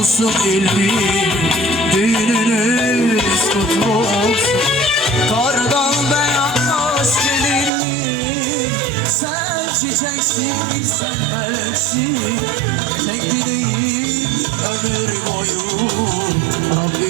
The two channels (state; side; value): drops out; left; at 7.7 s